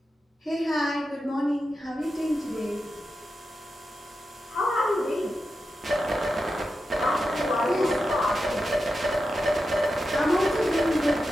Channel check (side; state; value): both; normal; correlation 0.89